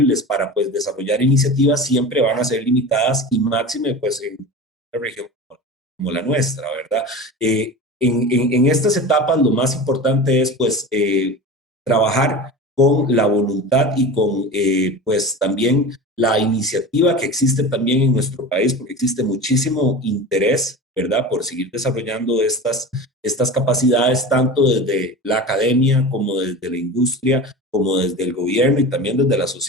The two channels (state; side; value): normal; both; correlation 0.31